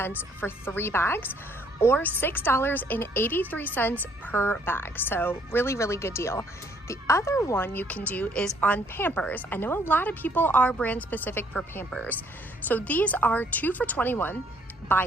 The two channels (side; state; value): both; normal; correlation 0.65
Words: for 3 bags, or $6.83 per bag. So really, really good deal. The other one you can do is on Pampers. I know a lot of people are brand specific for Pampers. So these are 2 for $21.